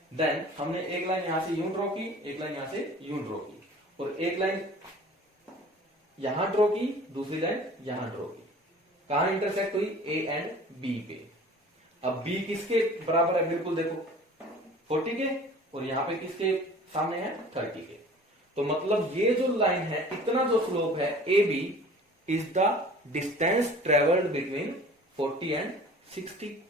देन हमने एक लाइन यहां से यूं ड्रॉ की, एक लाइन यहां से यूं ड्रॉ की, और एक लाइन यहां ड्रॉ की, दूसरी लाइन यहां ड्रॉ की। कहां इंटरसेक्ट हुई, A एंड B पे। अब B किसके बराबर है, बिल्कुल देखो 40 के, और यहां पे किसके सामने है, 30 के। तो मतलब ये जो लाइन है, इतना जो स्लोप है AB is the distance travelled between 40 and 60।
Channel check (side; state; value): both; normal; correlation 0.46